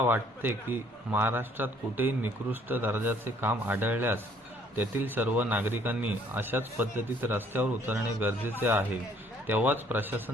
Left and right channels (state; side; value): normal; both; correlation 0.61